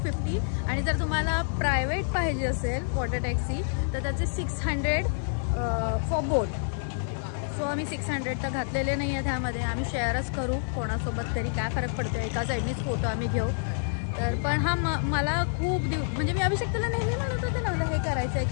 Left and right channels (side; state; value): right; silent; 55 dB below the other